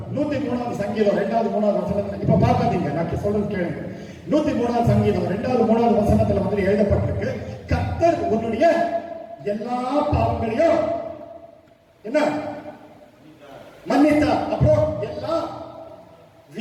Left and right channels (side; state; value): both; identical; correlation 1.00